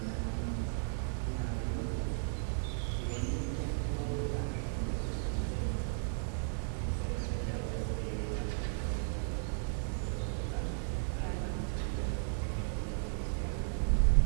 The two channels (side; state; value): left; silent; digital silence